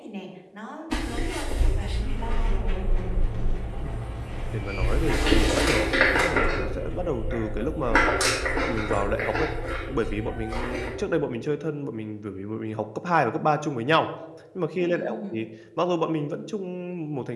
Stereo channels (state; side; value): identical; both; correlation 1.00